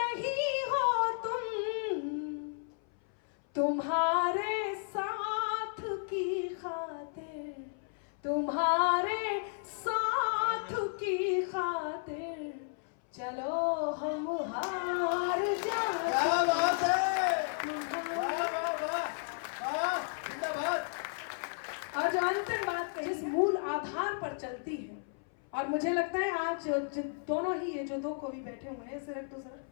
हो तुम, तुम्हारे साथ की खातिर, तुम्हारे साथ की खातिर चलो हम हार जाए। क्या बात है, वाह वाह वाह वाह, जिंदाबाद। और जो अंतिम बात कही, जिस मूल आधार पर चलती है, और मुझे लगता है आज दोनों ही ये जो दो कवि बैठे हुए हैं, सिर्फ दूसरा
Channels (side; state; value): right; silent; 55 dB below the other